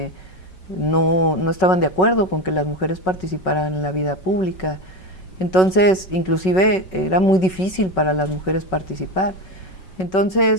no estaban de acuerdo con que las mujeres participaran en la vida pública. Entonces, inclusive era muy difícil para las mujeres participar.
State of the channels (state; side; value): late; right; 5.4 ms